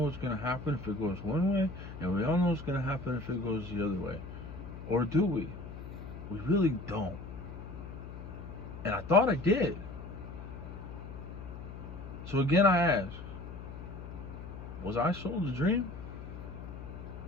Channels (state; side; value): noise; left; hum, 11 dB below the sound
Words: what's going to happen if it goes one way, and we all know what's going to happen if it goes the other way. Or do we? We really don't. And I thought I did. So again, I ask, was I sold a dream?